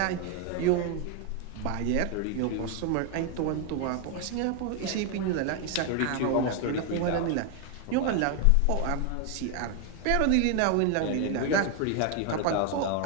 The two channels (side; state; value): both; different; correlation 0.01